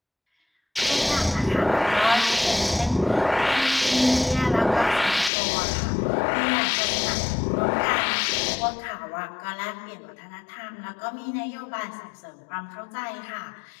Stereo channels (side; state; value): right; drops out; at 5.3 s